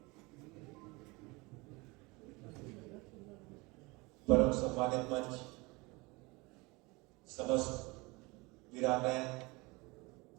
परम सम्मानित मंच, समस्त वीरांगनाएं,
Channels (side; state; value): left; quieter; 25.2 dB